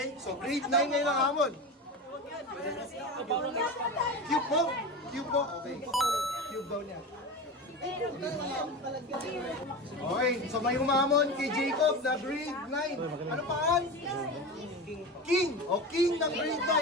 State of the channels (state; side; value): normal; both; correlation 0.26